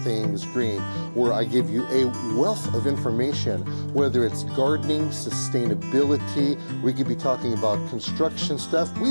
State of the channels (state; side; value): inverted; both; correlation -1.00